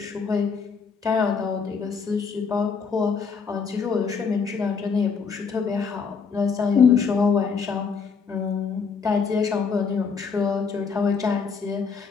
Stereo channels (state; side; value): quieter; right; 5.5 dB